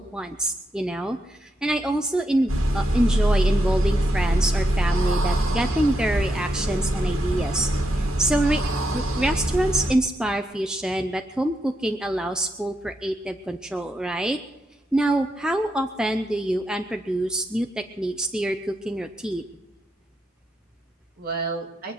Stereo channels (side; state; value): both; normal; correlation 0.82